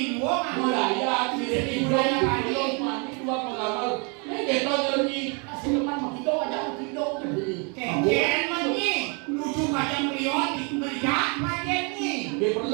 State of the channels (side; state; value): left; quieter; 34.1 dB